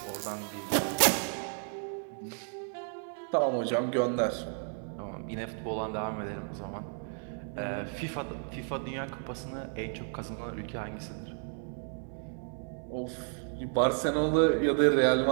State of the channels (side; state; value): left; silent; 56 dB below the other